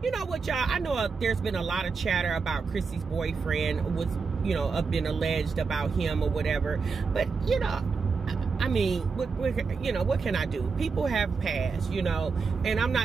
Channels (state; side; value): quieter; left; 5.0 dB